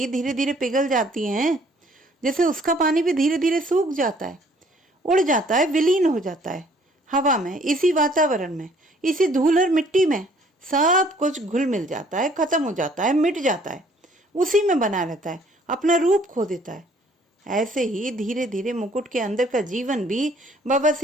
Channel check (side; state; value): both; normal; correlation 0.60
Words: धीरे धीरे पिघल जाती हैं, जैसे उसका पानी भी धीरे धीरे सूख जाता है, उड़ जाता है, विलीन हो जाता है हवा में, इसी वातावरण में, इसी धूल और मिट्टी में। सब कुछ घुल मिल जाता है, खत्म हो जाता है, मिट जाता है, उसी में बना रहता है, अपना रूप खो देता है। ऐसे ही धीरे धीरे मुकुट के अंदर का जीवन भी